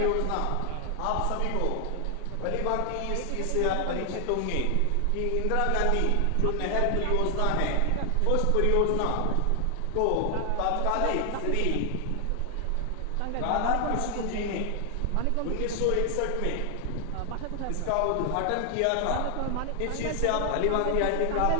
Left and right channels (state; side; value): different; both; correlation 0.00